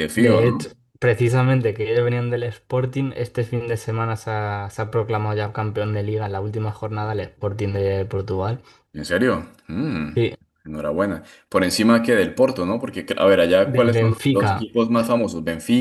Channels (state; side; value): identical; both; correlation 1.00